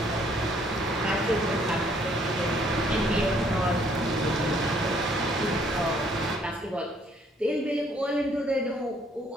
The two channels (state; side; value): normal; both; correlation 0.64